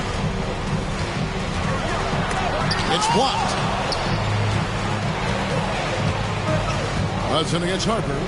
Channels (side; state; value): both; identical; correlation 1.00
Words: It's blocked. Hudson against Harper.